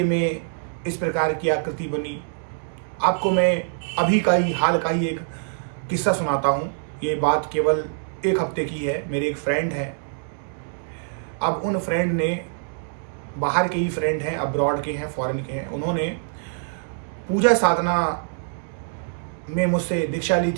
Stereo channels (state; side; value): silent; left; digital silence